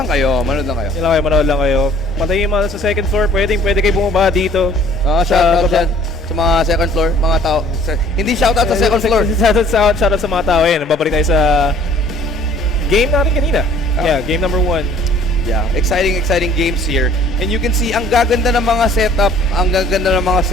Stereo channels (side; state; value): both; normal; correlation 0.55